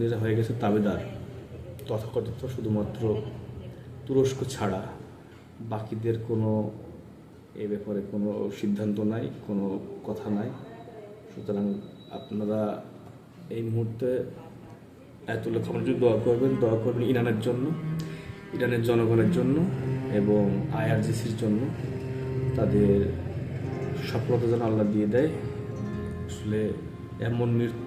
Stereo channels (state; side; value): identical; both; correlation 1.00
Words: হয়ে গেছে তাবেদার তথাকথিত, শুধুমাত্র তুরস্ক ছাড়া বাকিদের কোনো এ ব্যাপারে কোনো সিদ্ধান্ত নাই, কোনো কথা নাই। সুতরাং আপনারা এই মুহূর্তে আয়াতুল্লাহ খামেনির দোয়া করবেন ইরানের জন্য, ইরানের জনগণের জন্য এবং আইআরজিসির জন্য। তাদের সফলতা যেন আল্লাহ দিয়ে দেয়। আসলে এমন